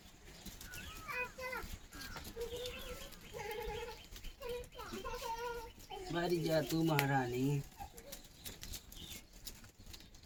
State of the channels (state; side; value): identical; both; correlation 1.00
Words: मरी जा तू महारानी।